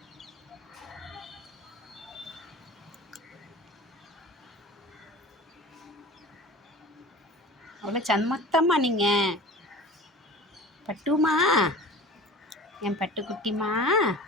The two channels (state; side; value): normal; both; correlation 0.39